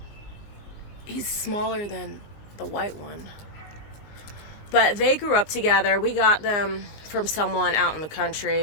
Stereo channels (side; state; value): right; late; 19 ms